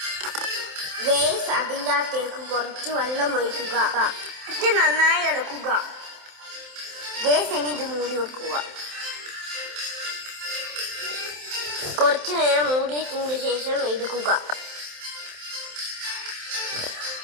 ഗൈസ്, അതിൻ്റെ അകത്തേക്ക് കുറച്ച് വെള്ളം ഒഴിക്കുക. എന്നിട്ട് നന്നായി ഇളക്കുക. ഗൈസ്, ഇനി ഇത് മൂടി വെക്കുക. കുറച്ചു നേരം മൂടി വെച്ചതിന് ശേഷം എടുക്കുക.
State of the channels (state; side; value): late; left; 27 ms